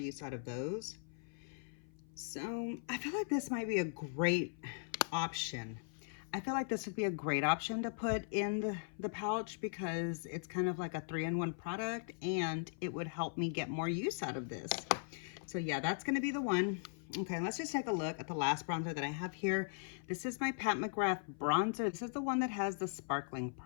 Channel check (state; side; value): silent; right; 52 dB below the other